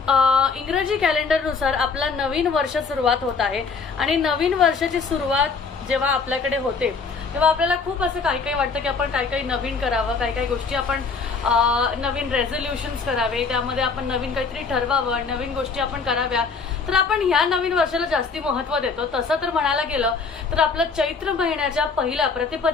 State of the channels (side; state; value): right; quieter; 4.9 dB